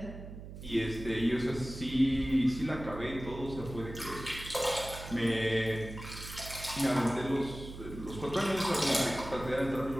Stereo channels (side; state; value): right; noise; hum, 12 dB below the sound